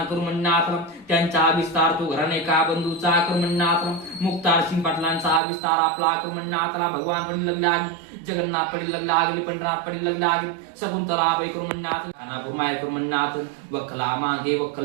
करू म्हणण्यात आला. त्यांचा हा विस्तार तो घराणे का बंधूचा करू म्हणण्यात आला. मुक्तार सिंग पाटलांचा हा विस्तार आपला करू म्हणण्यात आला. भगवान पडील लग्न आगे, जगन्नाथ पडील लग्न आगे, पंढरनाथ पडील लग्न आगे, शकुंतला बाई करू म्हणण्यात, खानापूर माय करू म्हणण्यात, वखला मागे वखल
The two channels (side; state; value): left; drops out; at 5.4 s